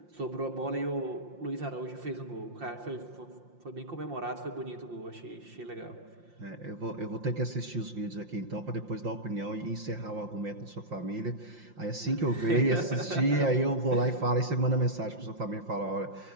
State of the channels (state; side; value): late; left; 5.7 ms